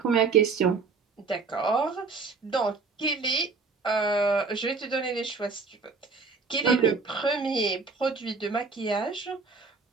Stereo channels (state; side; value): quieter; left; 4.5 dB